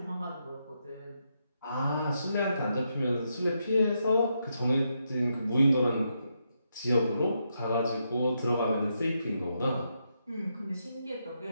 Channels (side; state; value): both; inverted; correlation -0.81